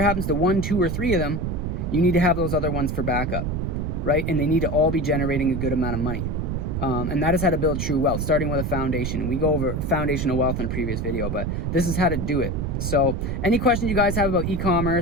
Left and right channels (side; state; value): right; noise; rumble, 2 dB below the sound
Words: happens to 1, 2, or 3 of them, you need to have those other ones for backup, right? And they need to all be generating a good amount of money. And that is how to build true wealth, starting with a foundation. We go over foundational wealth in a previous video, but this is how to do it. So any questions you guys have about